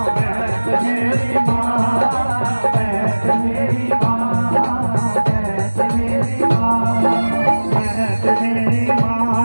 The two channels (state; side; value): inverted; both; correlation -1.00